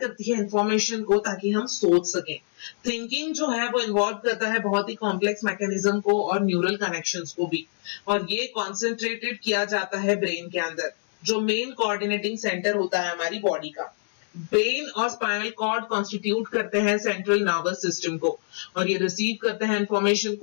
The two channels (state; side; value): silent; right; digital silence